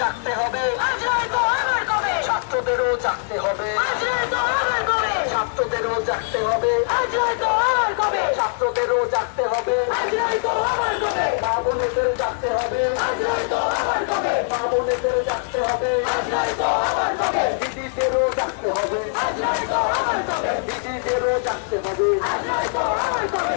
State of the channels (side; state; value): right; silent; digital silence